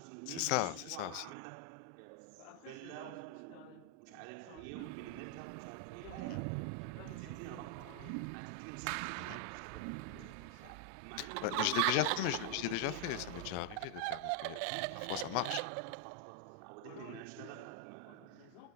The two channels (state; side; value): different; both; correlation 0.00